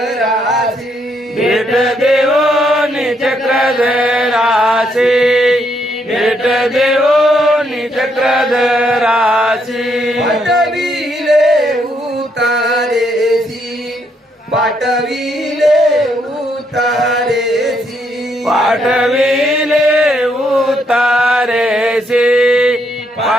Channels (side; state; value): both; normal; correlation 0.74